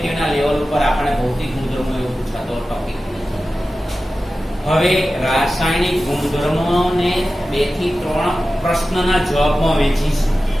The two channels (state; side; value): normal; both; correlation 0.94